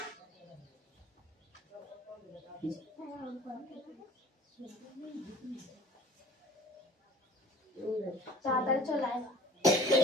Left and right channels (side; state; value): both; normal; correlation 0.46